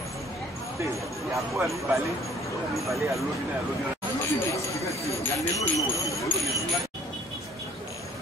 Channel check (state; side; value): normal; both; correlation 0.56